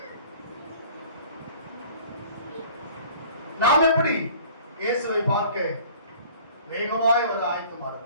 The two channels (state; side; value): inverted; both; correlation -0.49